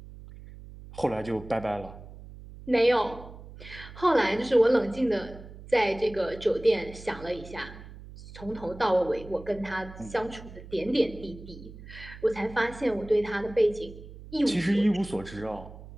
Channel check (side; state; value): right; noise; hum, 16 dB below the sound